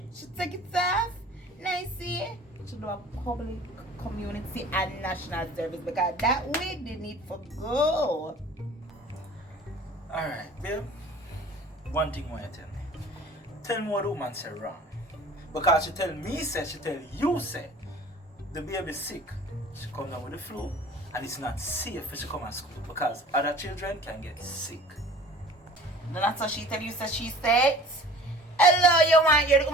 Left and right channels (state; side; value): normal; both; correlation 0.45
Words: she take it off. Nicey. She do a public, community and national service because that wig they need for go. Alright, babe. One thing I want you to tell me. Tell me what the woman said wrong. Because she tell me say, she tell you say, the baby sick. She come down with the flu and it's not safe for she come to school because other children can get sick. That's what she tell you, so she said. Hello, you want your